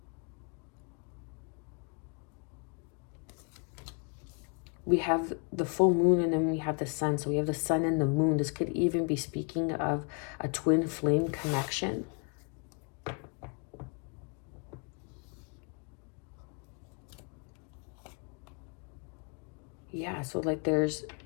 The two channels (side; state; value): right; quieter; 37.2 dB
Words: We have the full moon and then we have the sun. So we have the sun and the moon. This could even be speaking of a twin flame connection. Yeah, so like